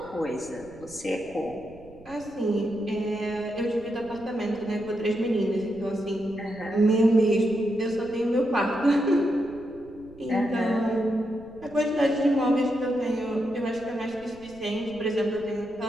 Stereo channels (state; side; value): noise; right; rumble, 23 dB below the sound